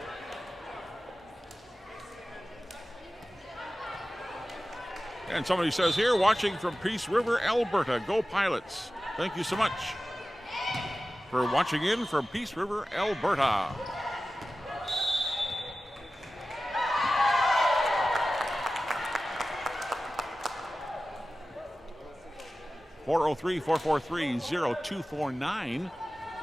And somebody says here, watching from Peace River, Alberta. Go Pilots. Thank you so much for watching in from Peace River, Alberta. (403-443-0249). You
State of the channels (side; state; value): both; normal; correlation 0.95